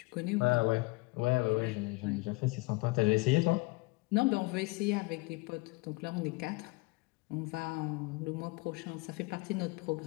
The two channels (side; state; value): right; quieter; 24.5 dB